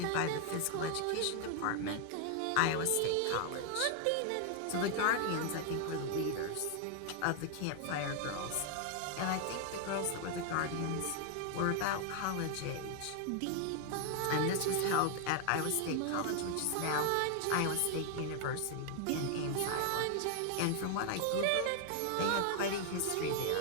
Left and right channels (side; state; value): both; different; correlation 0.00